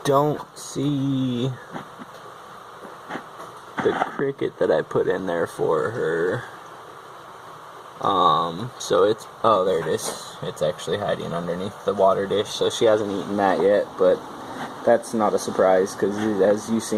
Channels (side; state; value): both; identical; correlation 1.00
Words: don't see the cricket that I put in there for her. So it's, oh, there it is. It's actually hiding underneath the water dish, so she hasn't eaten that yet, but that's not a surprise, because as you've